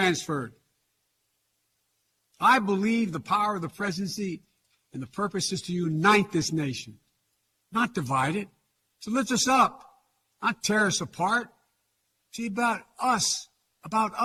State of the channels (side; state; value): both; identical; correlation 1.00